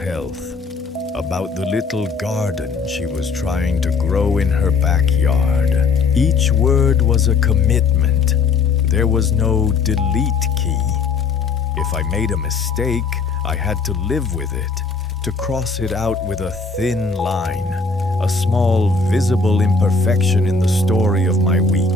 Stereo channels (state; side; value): quieter; right; 4.6 dB